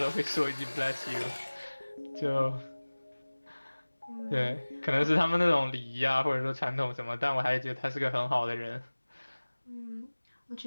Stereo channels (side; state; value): both; inverted; correlation -1.00